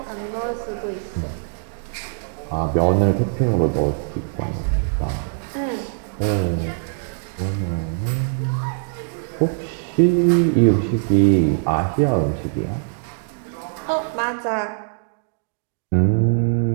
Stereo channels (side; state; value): left; silent; digital silence